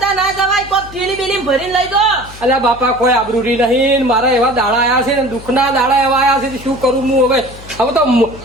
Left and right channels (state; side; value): noise; left; hum, 17 dB below the sound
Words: ના જવાય. કોઈ થેલી બેલી ભરીને લઈ જો. અલ્યા બાપા કોઈ આબરૂ નહીં. મારા એવા દાડા આયા છે ને દુઃખના દાડા એવા આયા છે તો શું કરું હું હવે? હવે તો